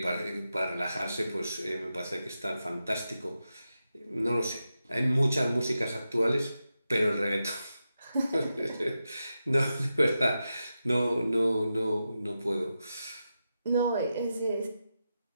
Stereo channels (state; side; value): inverted; both; correlation -0.89